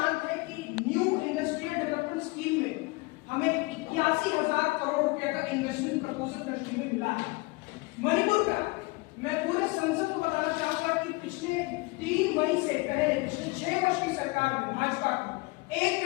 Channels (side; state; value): right; quieter; 25.2 dB